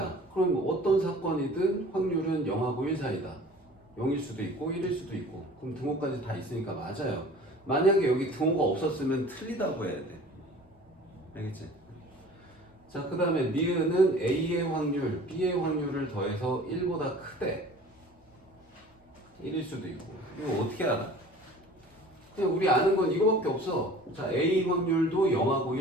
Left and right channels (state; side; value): normal; both; correlation 0.45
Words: 그럼 어떤 사건이든 확률은 0하고 1 사이다. 0일 수도 있고 1일 수도 있고. 그럼 등호까지 다 있으니까 맞아요. 만약에 여기 등호가 없었으면 틀리다고 해야 돼. 알겠지? 자, 그 다음에 니은은 A의 확률, B의 확률을 더해서 1보다 크대. 1일 수도 있고. 이거 어떻게 알아? 그냥 우리 아는 건 이거밖에 없어. 자, A 확률도 0하고